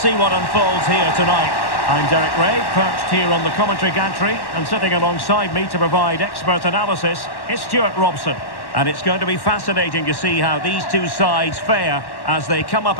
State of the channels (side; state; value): right; late; 1.1 ms